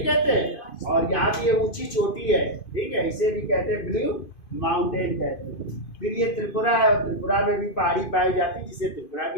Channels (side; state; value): right; late; 2.5 ms